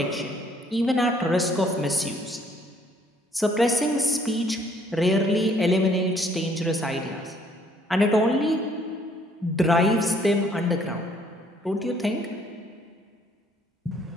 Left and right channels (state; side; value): normal; both; correlation 0.63